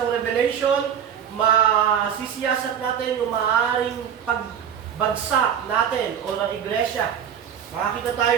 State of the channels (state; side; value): quieter; left; 8.6 dB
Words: Revelation, masisiyasat natin yung maaaring pagbagsak natin o ng iglesia. Makakita